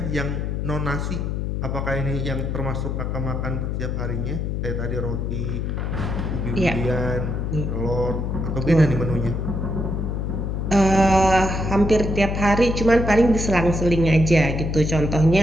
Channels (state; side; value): noise; left; hum, 2 dB below the sound